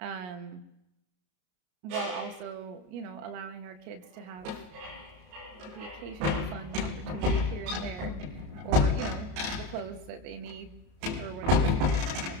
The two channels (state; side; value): late; left; 33 ms